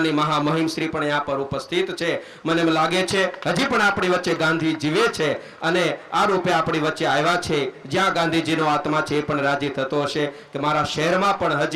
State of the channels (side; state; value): both; identical; correlation 1.00